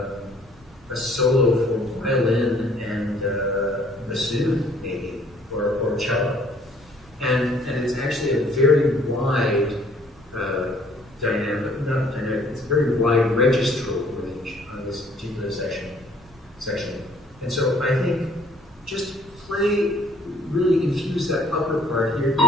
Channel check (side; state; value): both; normal; correlation 0.59